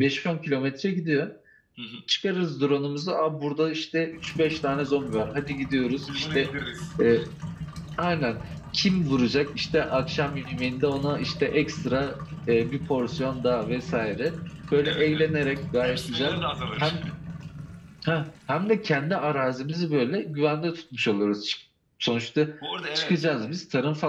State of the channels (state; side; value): identical; both; correlation 1.00